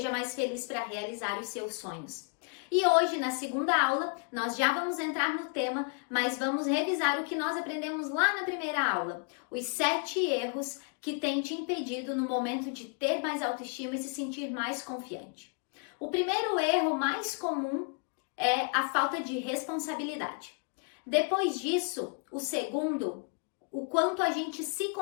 mais feliz para realizar os seus sonhos. E hoje, na segunda aula, nós já vamos entrar no tema, mas vamos revisar o que nós aprendemos lá na primeira aula. Os 7 erros que têm te impedido no momento de ter mais autoestima e se sentir mais confiante. O primeiro erro mais comum é a falta de responsabilidade. Depois disso, o segundo, o quanto a gente se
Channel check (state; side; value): quieter; right; 38.6 dB